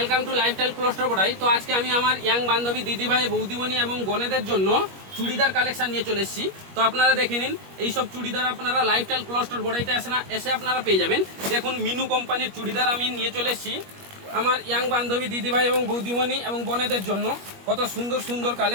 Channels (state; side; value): late; left; 21 ms